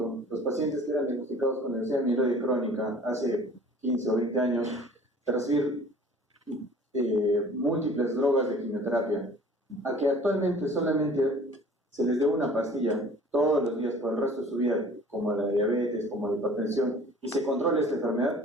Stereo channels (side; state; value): both; normal; correlation 0.48